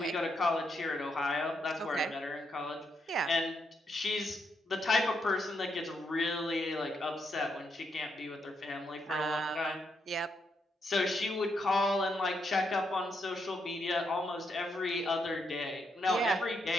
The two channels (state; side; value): normal; both; correlation 0.79